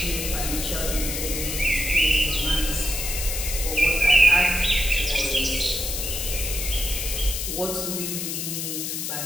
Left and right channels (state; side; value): noise; left; hiss, 3 dB below the sound